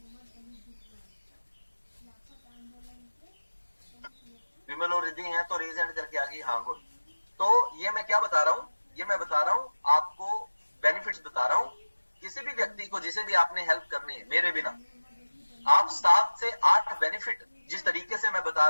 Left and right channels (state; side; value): inverted; both; correlation -1.00